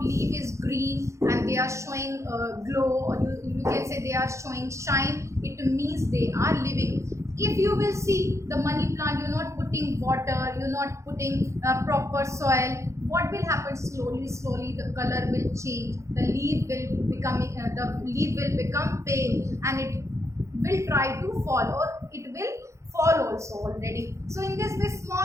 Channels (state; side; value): late; left; 0.14 ms